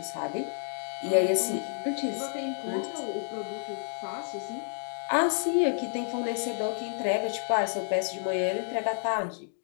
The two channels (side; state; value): right; silent; digital silence